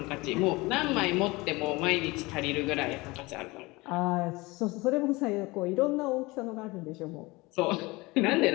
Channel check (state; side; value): quieter; right; 22.9 dB